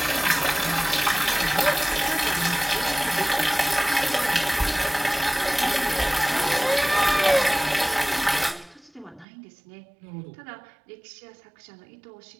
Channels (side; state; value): left; drops out; at 9.2 s